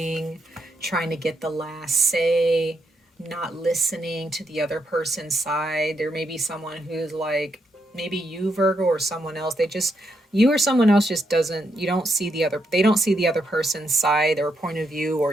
trying to get the last say, not listening to the other person's side. There may be someone who's like, maybe you, Virgo, or someone else. You or someone else just they don't see the other person's side or point of view, or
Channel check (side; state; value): both; normal; correlation 0.80